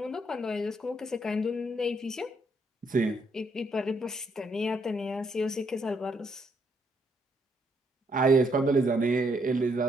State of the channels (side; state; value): both; normal; correlation 0.73